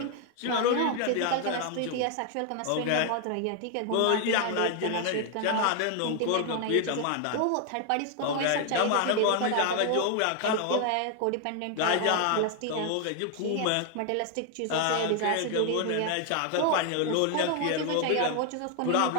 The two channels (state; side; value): different; both; correlation 0.00